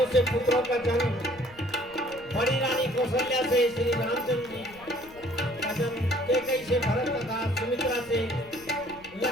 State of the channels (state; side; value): noise; left; rumble, 23 dB below the sound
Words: से पुत्रों का जन्म। बड़ी रानी कौशल्या से श्री रामचंद्र जी का जन्म, कैकेयी से भरत तथा सुमित्रा से